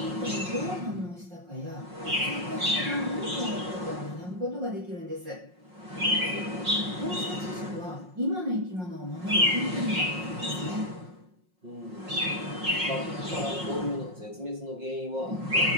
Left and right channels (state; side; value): late; left; 5.5 ms